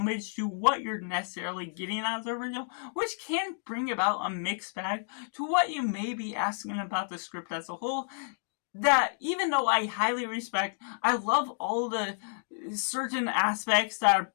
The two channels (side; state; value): right; silent; digital silence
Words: to what you're necessarily getting out of the original, which can bring about a mixed bag to what you may be asking about the script as a whole. That even though I highly respect, I love all the certain aspects that are